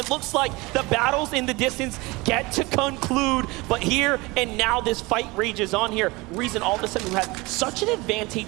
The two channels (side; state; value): left; quieter; 23.5 dB